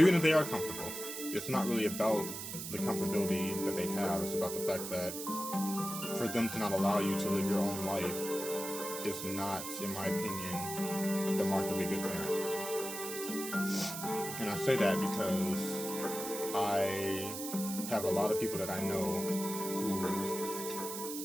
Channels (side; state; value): right; noise; hiss, 7 dB below the sound